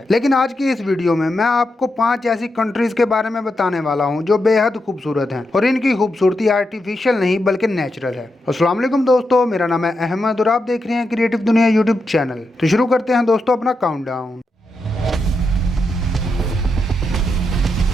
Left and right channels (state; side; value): normal; both; correlation 0.85